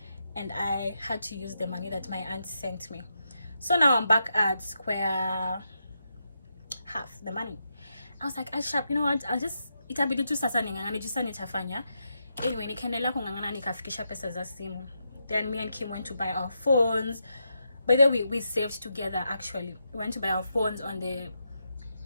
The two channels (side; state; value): both; inverted; correlation -0.84